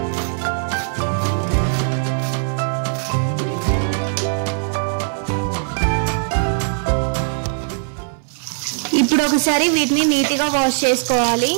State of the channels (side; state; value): left; silent; 66 dB below the other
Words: ఇప్పుడు ఒకసారి వీటిని నీట్ గా వాష్ చేసుకోవాలి